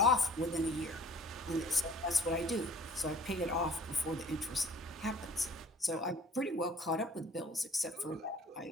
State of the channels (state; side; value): normal; both; correlation 0.51